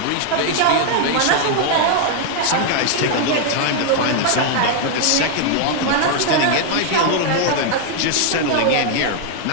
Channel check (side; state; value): both; different; correlation 0.00